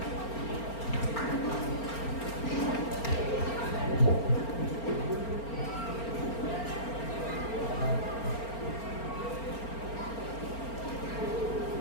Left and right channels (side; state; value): right; late; 4.4 ms